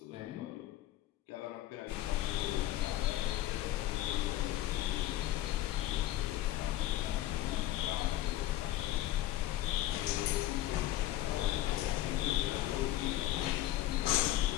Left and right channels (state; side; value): quieter; right; 14.4 dB